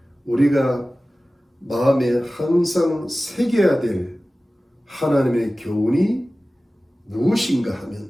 우리가 마음에 항상 새겨야 될 하나님의 교훈이 무엇인가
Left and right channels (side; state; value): both; normal; correlation 0.96